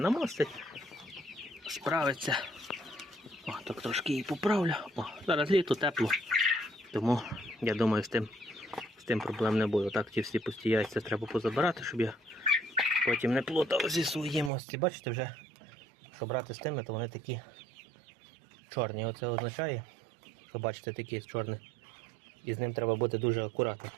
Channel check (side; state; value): left; drops out; at 14.5 s